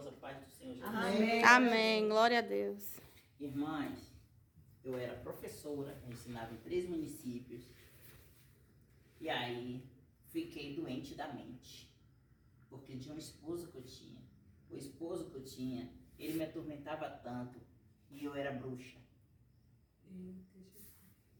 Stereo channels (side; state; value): both; identical; correlation 1.00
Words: paz do Senhor Jesus. Amém. Amém. Glória a Deus. Irmãs, eu era professora, eu ensinava em 3 municípios. E aí, fiquei doente da mente. Porque de um esposo que eu tinha. O esposo que eu tinha, ele me atormentava tanto. E eu era bruxa.